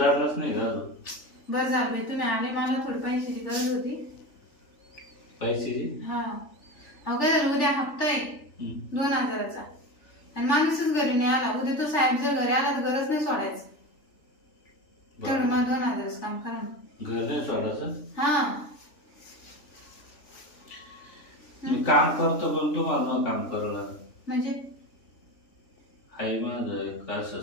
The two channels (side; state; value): right; late; 3.4 ms